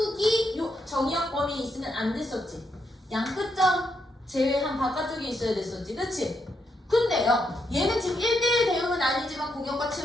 요 정의역 범위에 있으면 안 됐었지. 양끝점 제외한 바깥쪽에 있어야 됐었지. 그치? 근데요 얘는 지금 1대1 대응은 아니지만 공역과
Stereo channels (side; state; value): both; normal; correlation 0.79